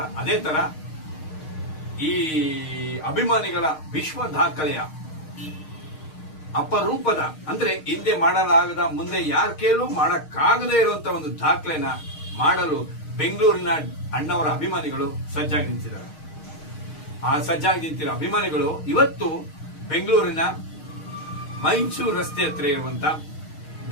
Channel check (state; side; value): late; right; 6.5 ms